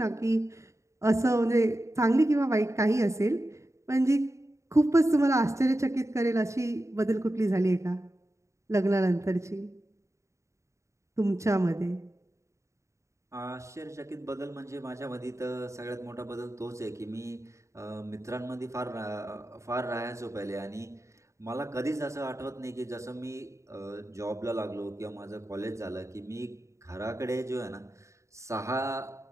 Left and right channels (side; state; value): left; late; 0.14 ms